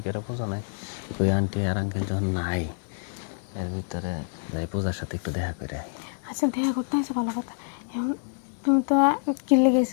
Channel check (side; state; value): right; silent; digital silence